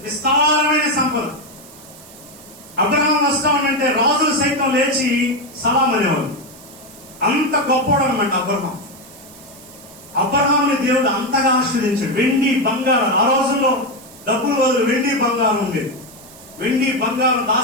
విస్తారమైన సంపద. అబ్రహాం వస్తా ఉంటే రాజులు సైతం లేచి సలాం అనేవాళ్ళు. అంత గొప్పవాడు అనమాట అబ్రహాం. అబ్రహాంని దేవుడు అంతగా ఆశీర్వదించాడు. వెండి బంగారం, ఆ రోజుల్లో డబ్బులు బదులు వెండి బంగారం ఉండేది. వెండి బంగారం,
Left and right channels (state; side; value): noise; right; hiss, 21 dB below the sound